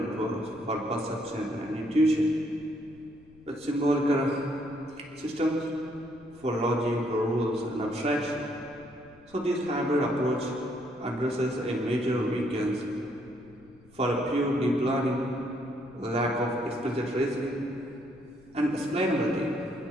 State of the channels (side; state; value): left; noise; rumble, 26 dB below the sound